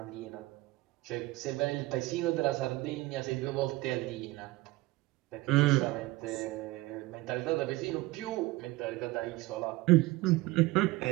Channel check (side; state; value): left; quieter; 19.7 dB